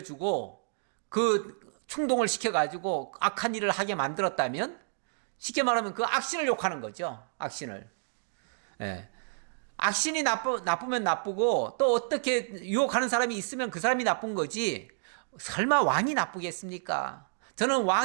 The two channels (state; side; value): silent; left; digital silence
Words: 그 충동을 시켜가지고 악한 일을 하게 만들었다면 쉽게 말하면 그 악신을 욕하는 거죠. 악신을. 예. 악신이 나쁘면 나쁘고 또 어떻게 유혹하는 사람이 있으면 그 사람이 나쁜 거지 설마 왕이 나쁘겠습니까? 저는